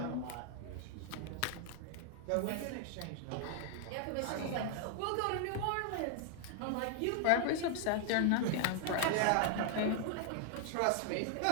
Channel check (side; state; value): both; different; correlation 0.00